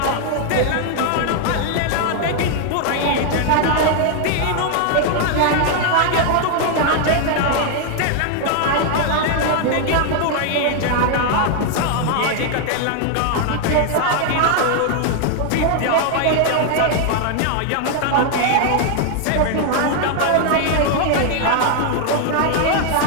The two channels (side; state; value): both; different; correlation 0.00